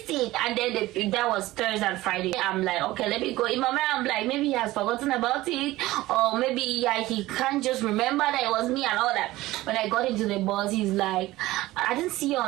it, and then that was Thursday and Friday. I'm like, okay, let me go. In my mind, I'm like, maybe he has forgotten about it, or maybe he can't just remember that it was me and all that. When I got into the bus, he's like, I didn't see you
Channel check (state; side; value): quieter; left; 17.5 dB